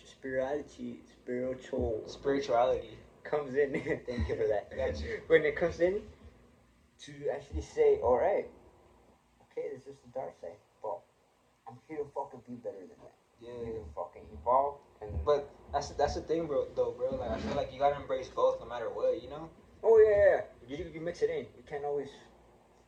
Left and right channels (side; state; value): both; identical; correlation 1.00